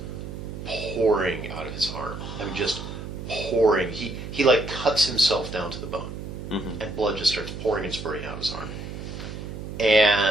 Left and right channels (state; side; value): noise; right; hum, 9 dB below the sound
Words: pouring out of his arm. I mean, just pouring. He like cuts himself down to the bone, and blood just starts pouring and spurting out of his arm.